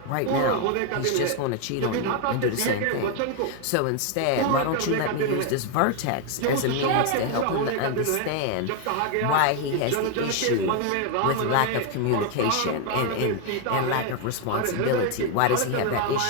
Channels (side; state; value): both; different; correlation 0.01